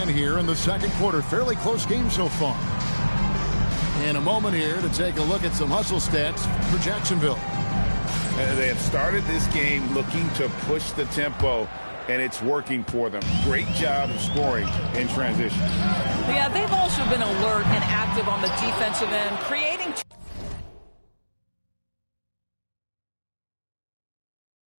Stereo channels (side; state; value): both; inverted; correlation -1.00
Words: here in the second quarter. Fairly close game so far. In a moment here to take a look at some hustle stats for Jacksonville. They have started this game looking to push the tempo, and it's working for them. Great job of scoring in transition. Yeah, they've also been alert and active on the defensive end, creating